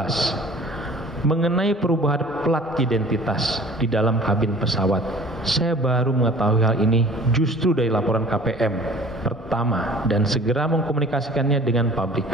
Mengenai perubahan plat identitas di dalam kabin pesawat, saya baru mengetahui hal ini justru dari laporan KPM pertama dan segera mengkomunikasikannya dengan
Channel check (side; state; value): both; normal; correlation 0.47